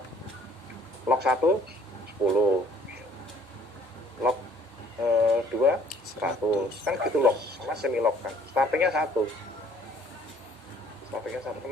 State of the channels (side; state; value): both; normal; correlation 0.59